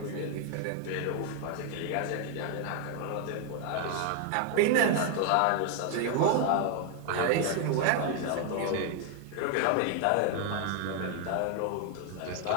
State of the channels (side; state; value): both; different; correlation 0.01